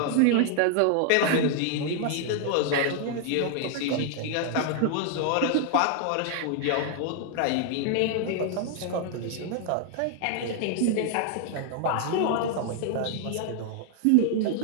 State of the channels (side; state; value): both; different; correlation 0.00